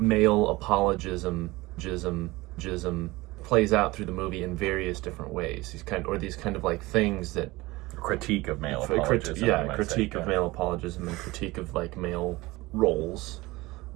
apologism jism plays out through the movie in various different ways. These kind of like things that critique of male apologism. Critique of male apologism and critique of like male roles,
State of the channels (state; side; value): quieter; left; 20.8 dB